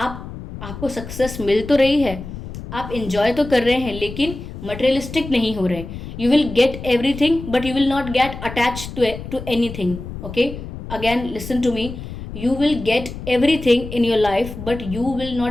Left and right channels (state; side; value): noise; left; rumble, 10 dB below the sound